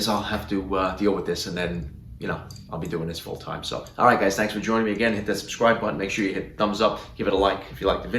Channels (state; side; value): identical; both; correlation 1.00